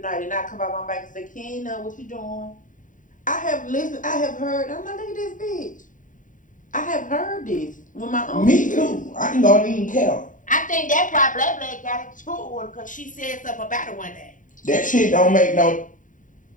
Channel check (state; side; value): late; right; 0.38 ms